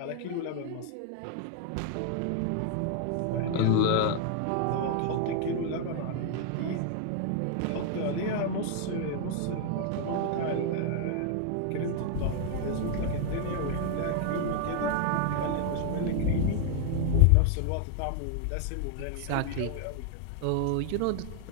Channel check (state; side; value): different; both; correlation 0.00